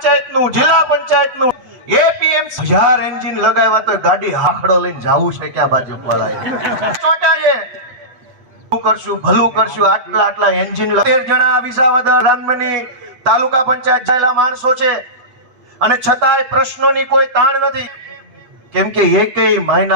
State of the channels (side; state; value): left; late; 8.1 ms